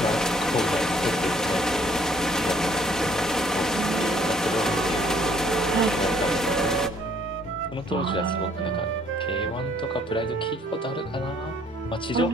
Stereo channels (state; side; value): normal; both; correlation 0.62